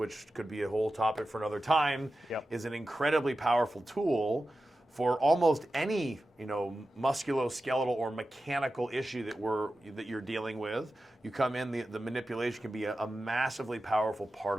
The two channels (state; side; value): normal; both; correlation 0.93